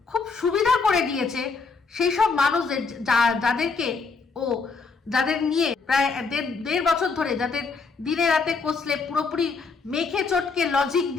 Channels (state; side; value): quieter; right; 4.6 dB